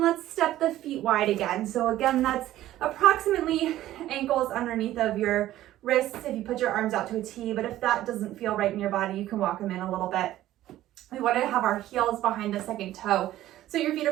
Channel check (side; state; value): left; quieter; 14.1 dB